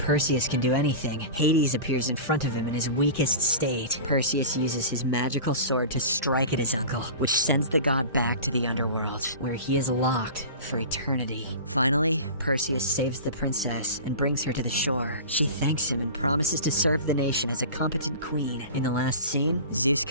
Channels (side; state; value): both; inverted; correlation -0.34